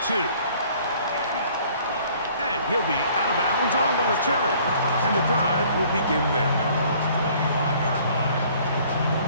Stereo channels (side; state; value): both; inverted; correlation -0.56